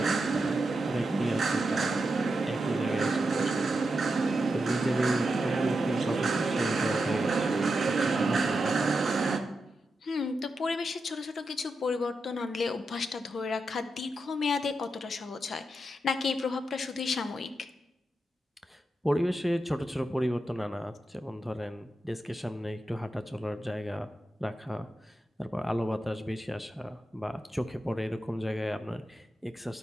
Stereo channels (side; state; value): both; normal; correlation 0.87